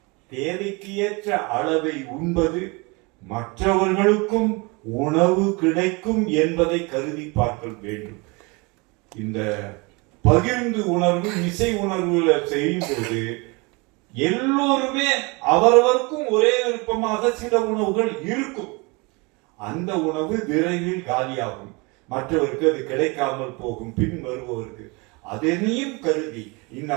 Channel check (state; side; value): quieter; left; 27.8 dB